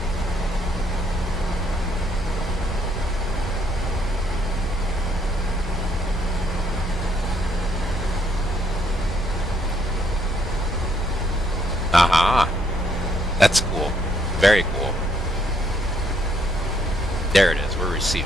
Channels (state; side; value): normal; both; correlation 0.70